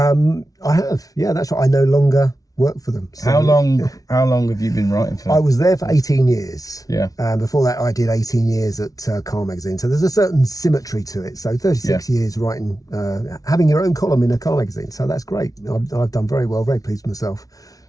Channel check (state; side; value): late; right; 0.18 ms